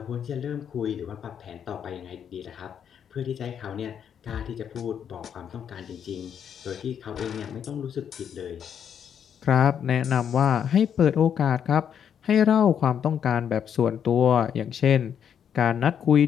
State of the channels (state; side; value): quieter; right; 8.4 dB